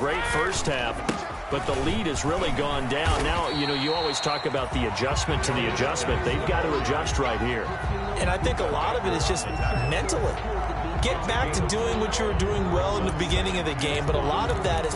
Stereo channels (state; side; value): identical; both; correlation 1.00